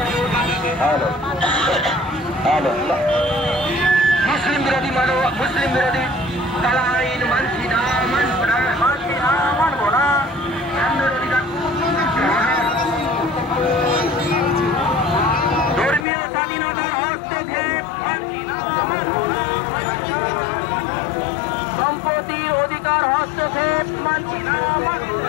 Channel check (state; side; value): drops out; right; at 16.1 s